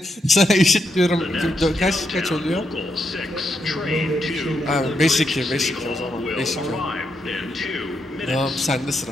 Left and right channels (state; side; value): normal; both; correlation 0.81